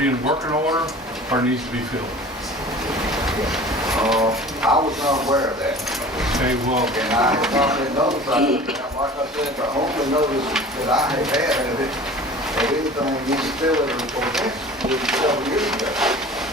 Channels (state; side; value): normal; both; correlation 0.42